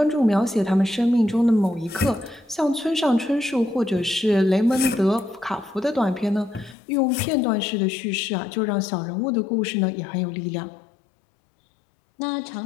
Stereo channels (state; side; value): drops out; right; at 6.8 s